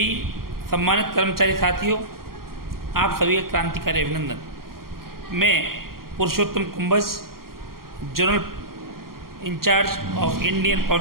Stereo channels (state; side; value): late; left; 0.92 ms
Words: सम्मानित कर्मचारी साथियों, आप सभी का क्रांतिकारी अभिनंदन। मैं Purushottam Kumbhaj, general in charge of Indian